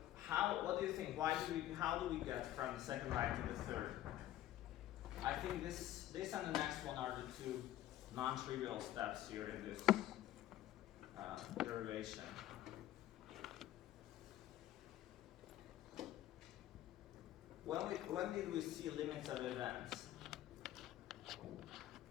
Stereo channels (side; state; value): right; quieter; 13.4 dB